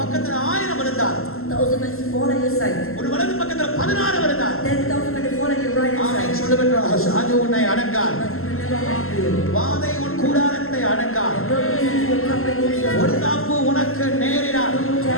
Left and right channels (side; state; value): right; late; 0.62 ms